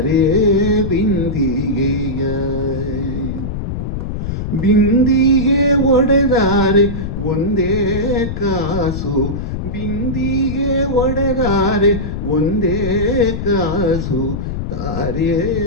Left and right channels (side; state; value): left; noise; rumble, 4 dB below the sound